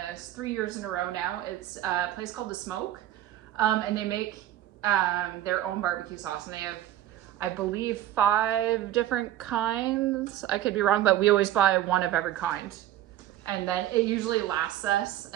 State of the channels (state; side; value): quieter; left; 13.0 dB